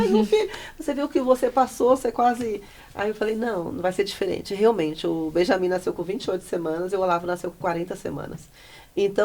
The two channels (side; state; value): both; identical; correlation 1.00